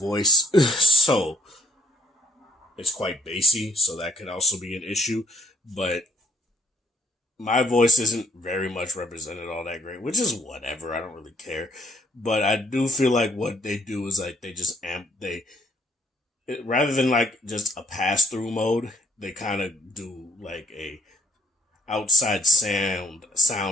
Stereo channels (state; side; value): normal; both; correlation 0.66